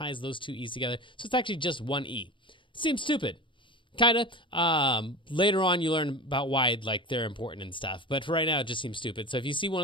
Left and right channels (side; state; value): right; late; 0.24 ms